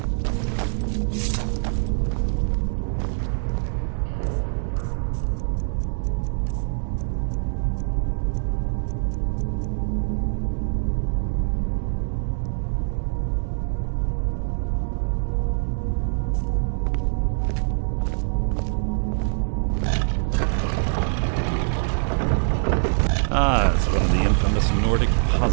Ah, it's one of the infamous Nordic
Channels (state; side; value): silent; left; 63 dB below the other